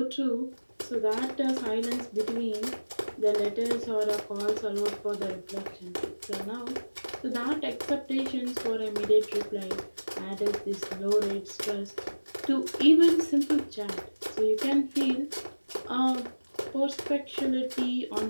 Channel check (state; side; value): inverted; both; correlation -1.00